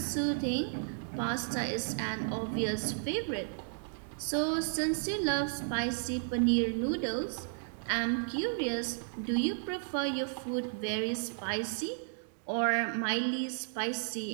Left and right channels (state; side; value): silent; left; digital silence